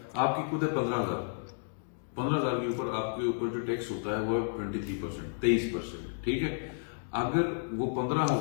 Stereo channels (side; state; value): right; silent; digital silence